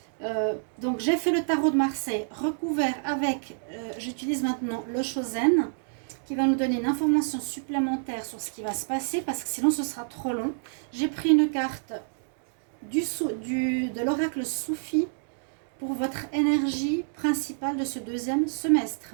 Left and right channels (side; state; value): left; silent; digital silence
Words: Donc j'ai fait le tarot de Marseille recouvert avec, j'utilise maintenant le Chosen qui va nous donner une information supplémentaire sur ce qui va se passer parce que sinon ce sera trop long. J'ai pris une carte de l'oracle Soufi pour votre énergie principale de ce deuxième